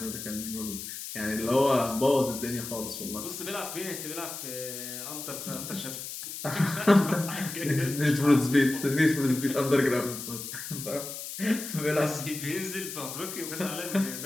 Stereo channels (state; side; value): noise; left; hiss, 8 dB below the sound